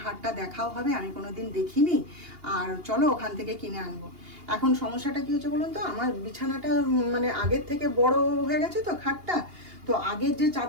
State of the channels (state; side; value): late; left; 2.8 ms